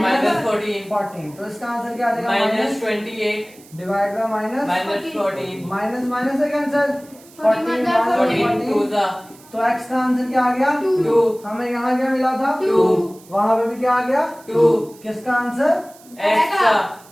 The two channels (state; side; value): noise; right; hiss, 24 dB below the sound